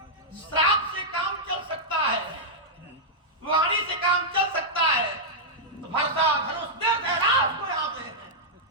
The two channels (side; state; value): both; normal; correlation -0.09